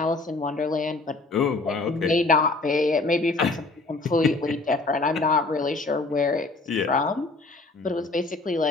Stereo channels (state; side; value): quieter; right; 3.4 dB